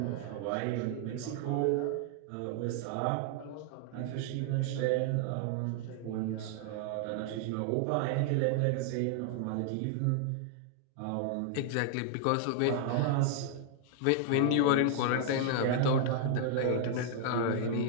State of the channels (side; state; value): both; different; correlation 0.00